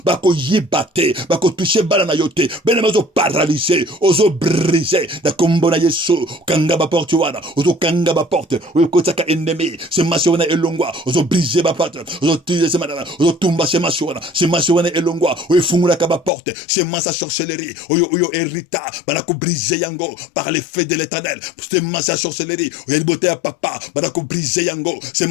bako yibate, bako toucher bana na yote, bine mozo paralyser, ozo briser, na kombo na Yesu, kanga ba porte wana, ozo kanga ba porte, oyo kotaka ennemi, semence wana elongwa, ozo briser ba porte, ozo tuer semana, ozo tumba semence wana elongwa, oyo fungula ka ba porte, semence à sorcellerie, oyo hérita, banako briser yango, par les feux de l'Éternel, semence à sorcellerie, oyo libote ya papa, banako briser yango,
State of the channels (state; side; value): drops out; right; at 16.3 s